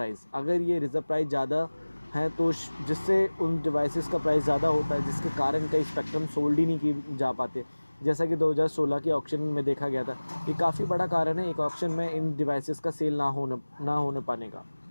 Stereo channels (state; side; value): inverted; both; correlation -1.00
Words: अगर ये रिज़र्व प्राइस ज़्यादा है तो जिससे उन डिवाइसेस का प्राइस ज़्यादा होता है, जिसके कारण कई स्पेक्ट्रम सोल्ड ही नहीं की जा पाते, जैसा कि 2016 के ऑक्शन में देखा गया था। ये काफ़ी बड़ा कारण है एक ऑक्शन में इन डिवाइसेस का सेल ना होने पाने का।